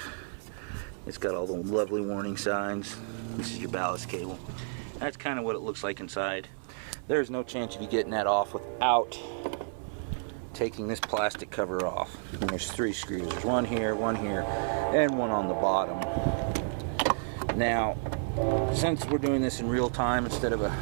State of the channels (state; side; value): silent; left; 57 dB below the other